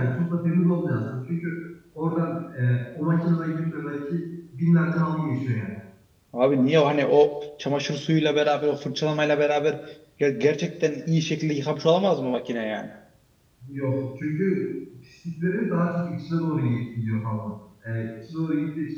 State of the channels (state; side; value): identical; both; correlation 1.00